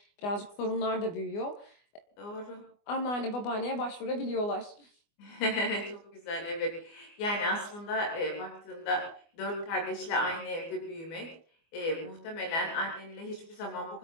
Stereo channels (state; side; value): late; right; 24 ms